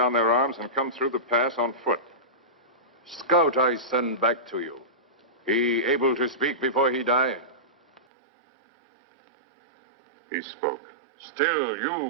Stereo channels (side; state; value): left; drops out; at 8.0 s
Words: their arms and come through the pass on foot. Scout I send back to you. He able to speak before he die? He spoke. Still,